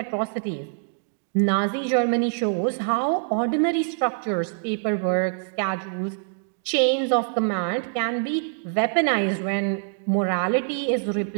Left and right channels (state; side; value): silent; left; digital silence